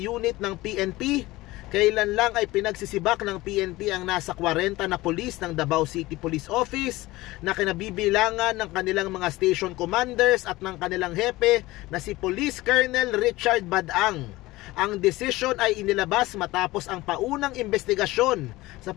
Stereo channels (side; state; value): right; quieter; 19.2 dB